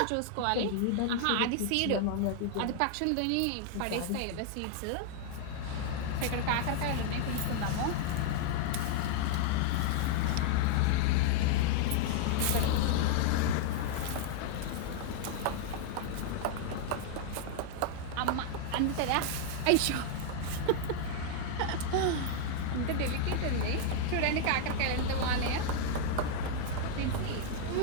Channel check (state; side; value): different; both; correlation 0.00